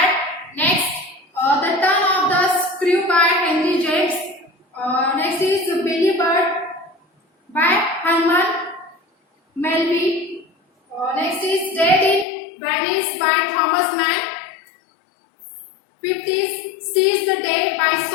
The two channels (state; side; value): drops out; right; at 12.2 s